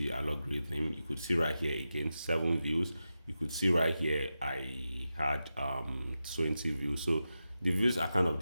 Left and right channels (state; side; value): inverted; both; correlation -0.91